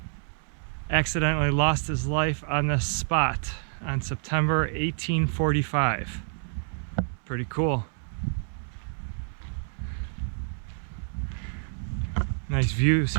accidentally lost his life on this spot on September 1845. Pretty cool. Nice views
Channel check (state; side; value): silent; left; 59 dB below the other